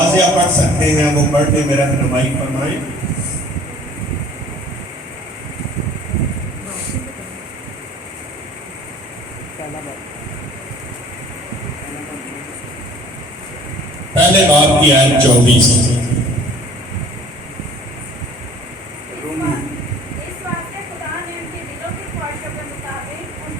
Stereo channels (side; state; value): both; normal; correlation 0.50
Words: پڑھ سکتے ہیں وہ پڑھ کے میرا رہنمائی فرمائیں۔ پہلے باب کی آیت 24۔ اس واسطے خدا نے ان کے دلوں کی خواہشوں کے مطابق